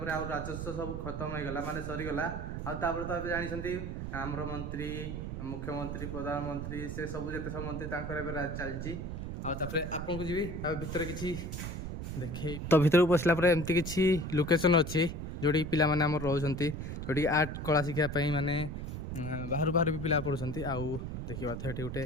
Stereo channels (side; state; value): right; noise; rumble, 5 dB below the sound